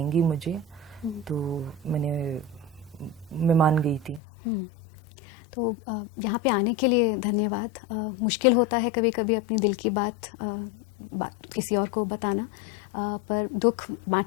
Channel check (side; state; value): right; drops out; at 4.2 s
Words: मुझे, तो मैं मान गई थी। तो यहाँ पे आने के लिए धन्यवाद। मुश्किल होता है कभी कभी अपनी दिल की बात किसी और को बताना, पर दुख